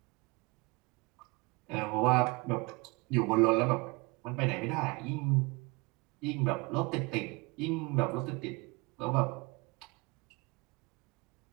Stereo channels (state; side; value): quieter; left; 26.3 dB